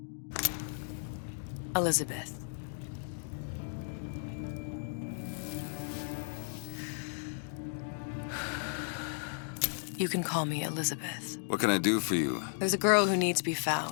Elizabeth. You can call me Elizabeth. What can I do for you? There's a girl who needs to be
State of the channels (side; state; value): right; silent; digital silence